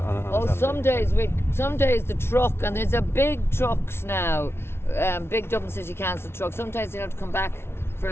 some days the truck, and there's a big trucks now, big Dublin City Council truck. Sometimes you have to come back for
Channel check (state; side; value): late; right; 0.12 ms